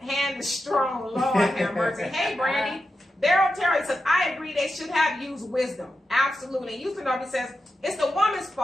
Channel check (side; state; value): both; normal; correlation 0.89